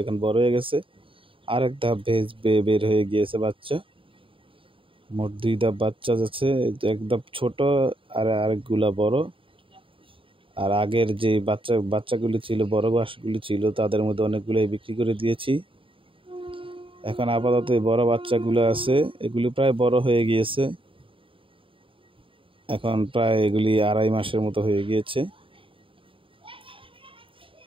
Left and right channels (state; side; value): late; left; 0.25 ms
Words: এখন বড় হয়ে গেছে। আরেক ধাপ বের হয়ে গিয়েছে বাচ্চা। মোট 2 ধাপ বাচ্চা যাচ্ছে, এক ধাপ ছোট আর আরেকগুলা বড়। আর আগের যে বাচ্চাগুলি ছিল, বড় বাসগুলি ছিল, তাদের মধ্যে অনেকগুলোই বিক্রি করে দিয়েছি। এখন আপাতত বড় বাচ্চাগুলো আছে, এগুলি প্রায় বড় হয়ে গিয়েছে। এখন প্রায় এগুলি 2.5 মাসের মতো হয়ে গিয়েছে।